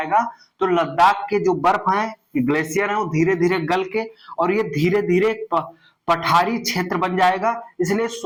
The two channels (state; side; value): identical; both; correlation 1.00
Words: तो लद्दाख के जो बर्फ है, ग्लेशियर है, वो धीरे धीरे गल के और ये धीरे धीरे पठारी क्षेत्र बन जाएगा। इसलिए